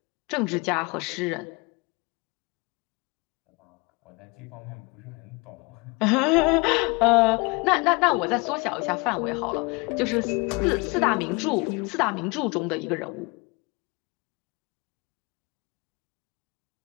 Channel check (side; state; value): right; quieter; 28.1 dB